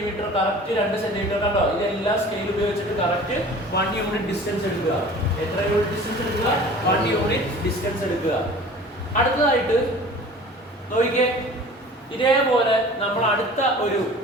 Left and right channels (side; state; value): both; normal; correlation 0.43